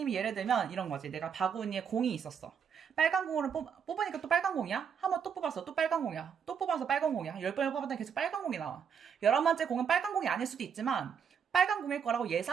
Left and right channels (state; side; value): quieter; left; 7.2 dB